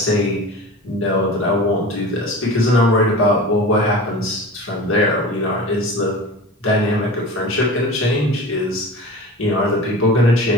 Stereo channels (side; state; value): both; normal; correlation 0.35